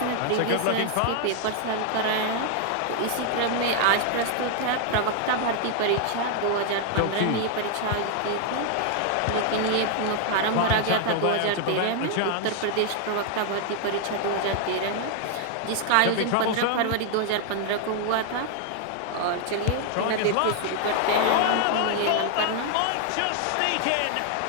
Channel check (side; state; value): both; different; correlation 0.00